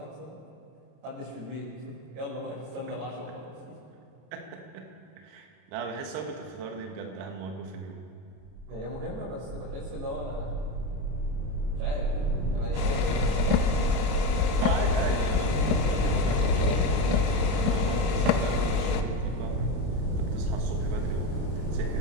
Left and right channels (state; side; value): late; left; 32 ms